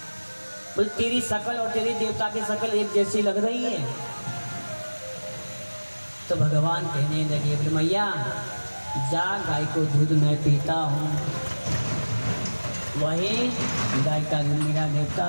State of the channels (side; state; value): both; inverted; correlation -1.00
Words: बोले तेरी शकल और तेरी देवता की शकल एक जैसी लग रही है। तो भगवान कहने लगे, बोले मैया जा गाय को दूध मैं पीता हूँ, वही गाय का दूध मेरा